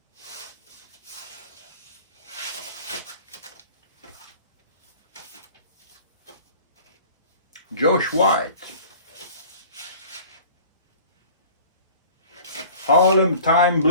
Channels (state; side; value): inverted; both; correlation -0.47